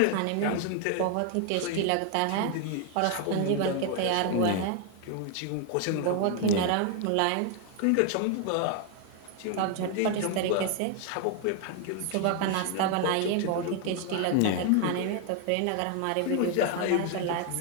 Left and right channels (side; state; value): both; different; correlation 0.00